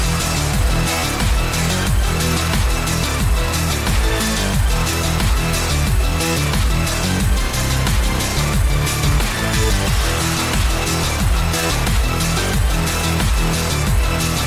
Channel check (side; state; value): both; identical; correlation 1.00